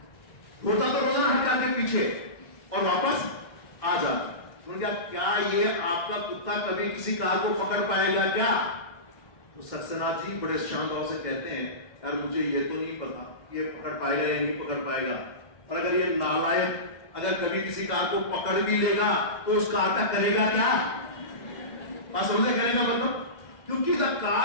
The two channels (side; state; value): right; late; 2.1 ms